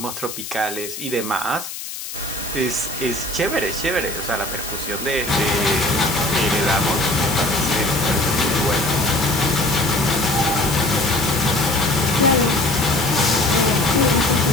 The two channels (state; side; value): noise; left; hiss, 9 dB below the sound